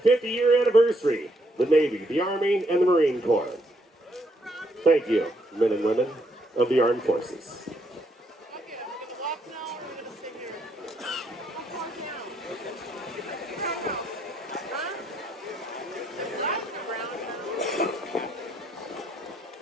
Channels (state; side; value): normal; both; correlation 0.73